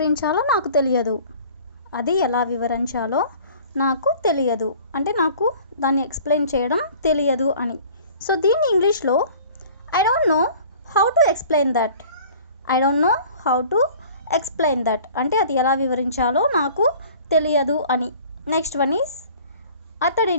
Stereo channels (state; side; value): inverted; both; correlation -0.48